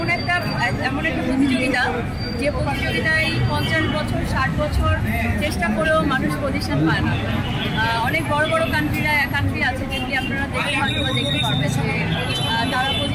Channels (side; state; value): both; identical; correlation 1.00